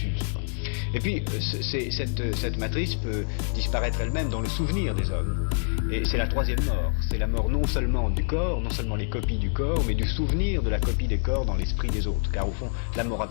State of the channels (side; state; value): right; silent; 61 dB below the other